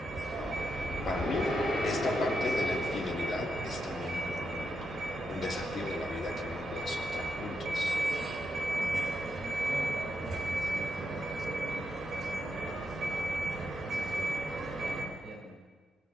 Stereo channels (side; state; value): both; normal; correlation 0.83